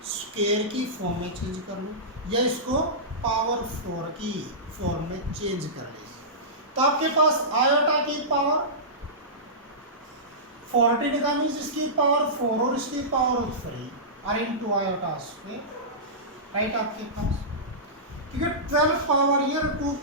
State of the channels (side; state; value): both; normal; correlation -0.18